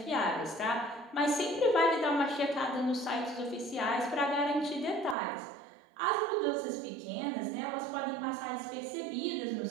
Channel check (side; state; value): left; drops out; at 5.2 s